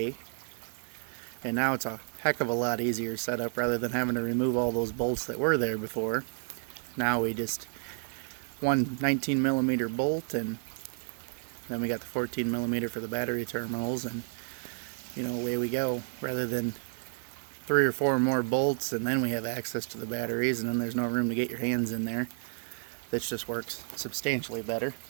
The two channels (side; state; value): left; silent; 55 dB below the other